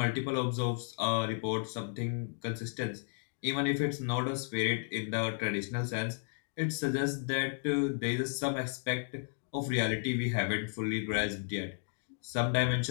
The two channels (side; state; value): right; silent; 55 dB below the other